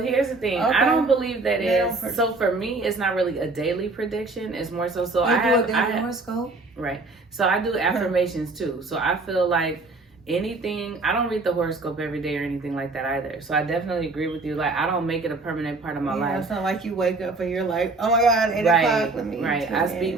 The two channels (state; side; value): quieter; left; 3.4 dB